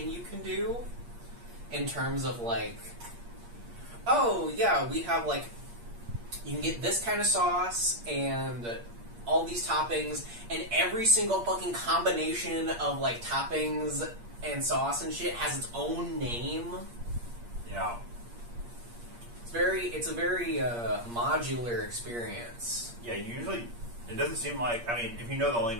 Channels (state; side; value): late; left; 8.5 ms